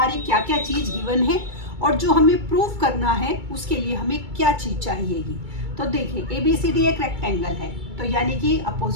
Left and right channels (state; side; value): late; left; 2.3 ms